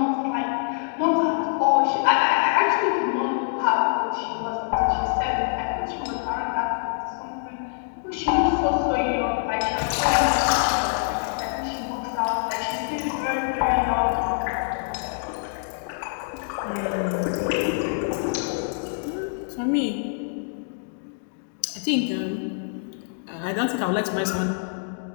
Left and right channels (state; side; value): silent; right; digital silence